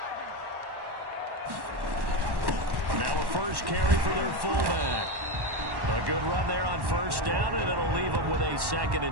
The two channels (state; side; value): late; left; 1.1 ms